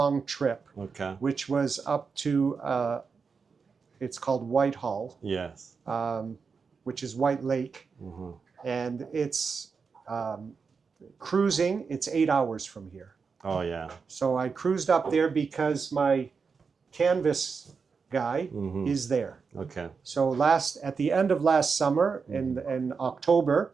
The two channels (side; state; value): left; quieter; 5.3 dB